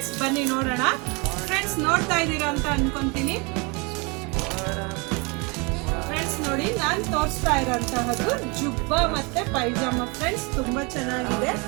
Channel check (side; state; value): left; quieter; 29.7 dB